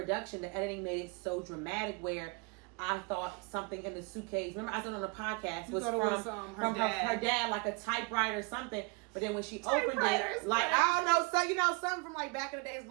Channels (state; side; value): quieter; left; 29.7 dB